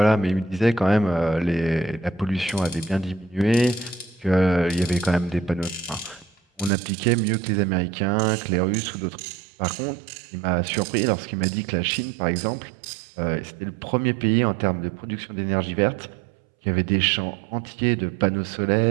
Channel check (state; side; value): drops out; left; at 6.7 s